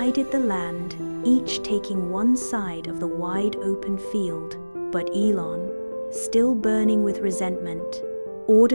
the land, each taking one side of the wide open field, but Elon, still burning with resentment,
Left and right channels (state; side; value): inverted; both; correlation -1.00